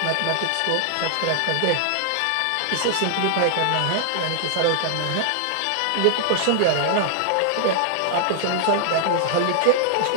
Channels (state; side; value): different; both; correlation -0.01